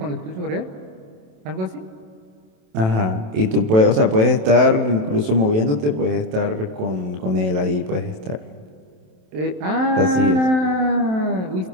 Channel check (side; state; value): left; late; 27 ms